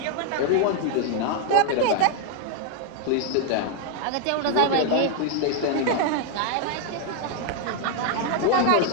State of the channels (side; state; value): both; different; correlation 0.00